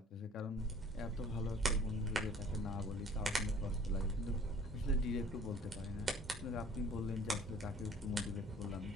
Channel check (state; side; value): normal; both; correlation 0.52